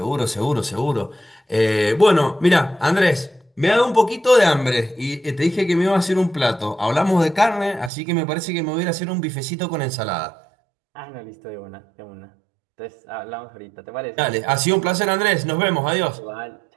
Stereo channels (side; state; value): left; drops out; at 7.9 s